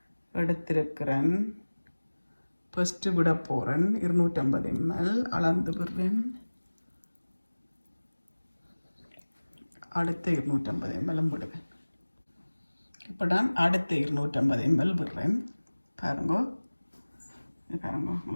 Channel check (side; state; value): both; inverted; correlation -1.00